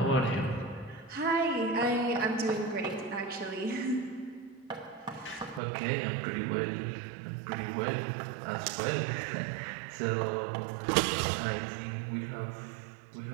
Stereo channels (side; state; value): left; drops out; at 5.6 s